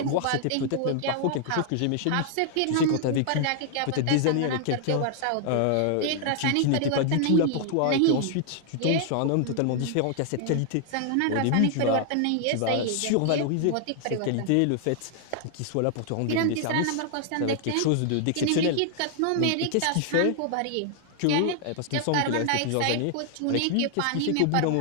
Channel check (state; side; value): different; both; correlation 0.00